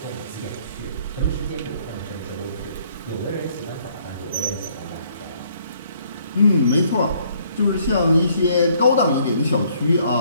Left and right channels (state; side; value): inverted; both; correlation -0.65